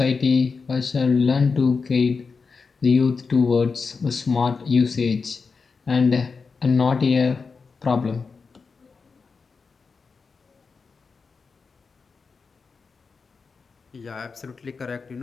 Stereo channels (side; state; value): right; quieter; 4.9 dB